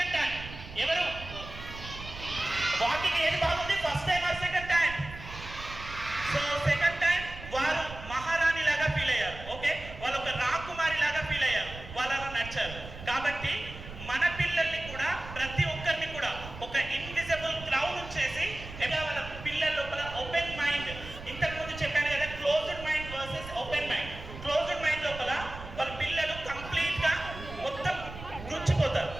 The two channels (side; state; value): right; noise; rumble, 12 dB below the sound